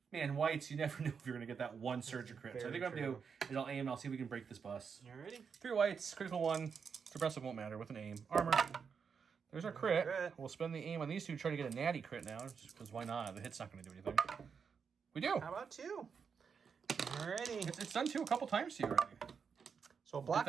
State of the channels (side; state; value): left; quieter; 6.2 dB